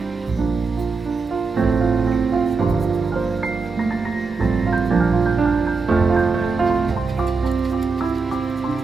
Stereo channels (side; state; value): left; quieter; 4.4 dB